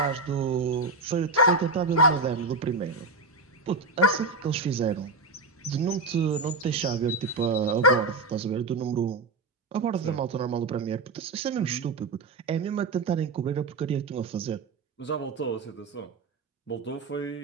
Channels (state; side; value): quieter; left; 3.5 dB